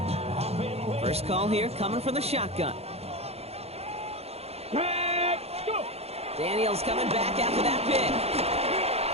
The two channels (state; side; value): late; left; 0.30 ms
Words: First call here coming from the shotgun. Let's go. Daniels coming back after that pick.